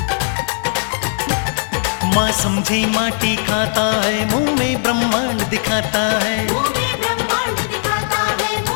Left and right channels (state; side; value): silent; right; digital silence